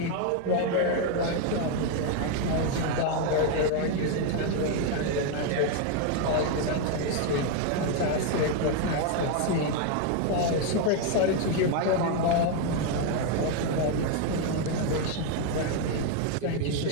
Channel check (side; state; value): both; different; correlation 0.01